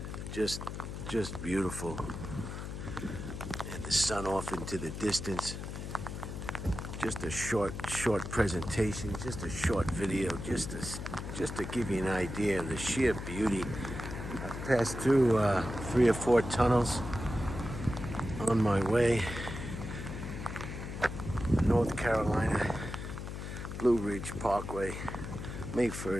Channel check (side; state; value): left; noise; hum, 7 dB below the sound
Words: Just beautiful. And the sun off into the distance. Just a short presentation, just a short video, just to give you an idea of the sheer beauty. I've passed through 3 or 4 tunnels on my way, North Carolina, Blue Ridge Parkway, May